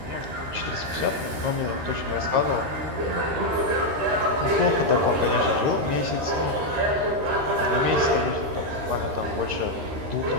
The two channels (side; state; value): left; late; 13 ms